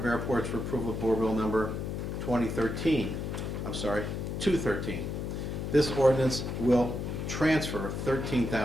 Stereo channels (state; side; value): noise; left; hum, 4 dB below the sound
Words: Airports for approval of Board Bill number 213. This ordinance will transfer